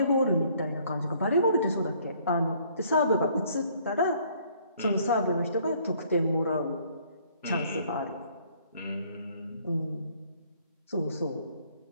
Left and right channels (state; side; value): inverted; both; correlation -0.61